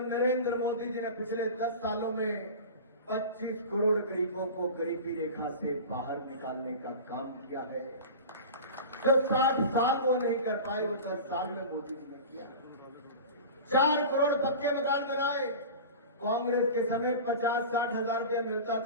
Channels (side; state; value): both; inverted; correlation -0.32